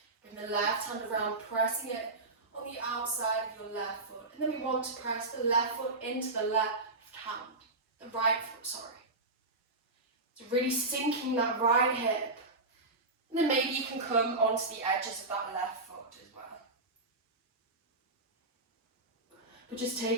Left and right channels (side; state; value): left; quieter; 3.1 dB